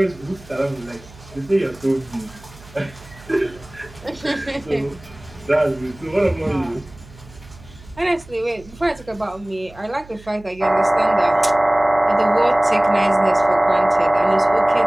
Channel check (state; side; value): noise; right; hum, 22 dB below the sound